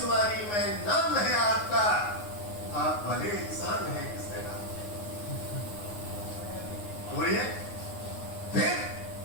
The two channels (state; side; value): late; right; 9.6 ms